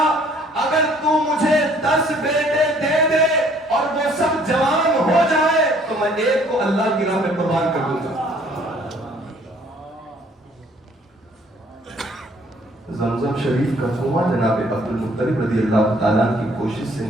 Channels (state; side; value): normal; both; correlation 0.59